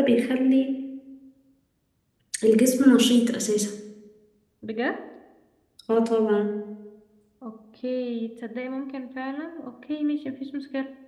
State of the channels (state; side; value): identical; both; correlation 1.00